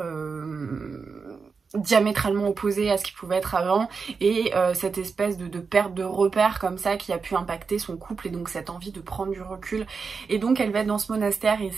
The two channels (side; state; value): left; quieter; 5.1 dB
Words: diamétralement opposé à ce qu'il pouvait être avant, et cette espèce de perte de repère comme ça qui a pu impacter son couple, et donc cette envie de prendre du recul. Et donc elle va être dans ce monastère et